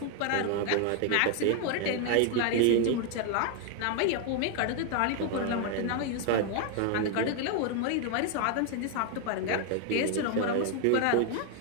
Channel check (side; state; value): both; different; correlation 0.00